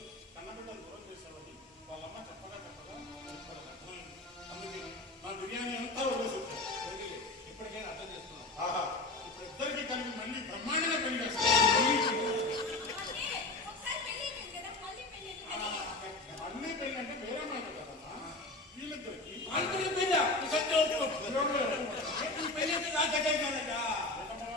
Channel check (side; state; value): right; quieter; 3.2 dB